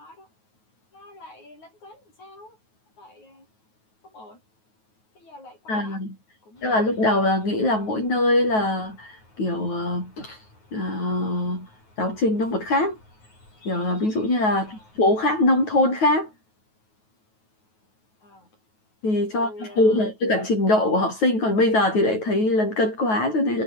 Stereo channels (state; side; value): late; right; 9.3 ms